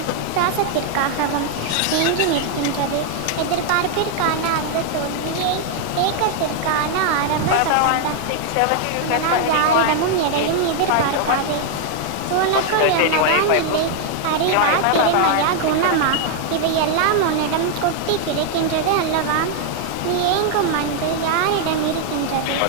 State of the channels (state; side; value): different; both; correlation 0.00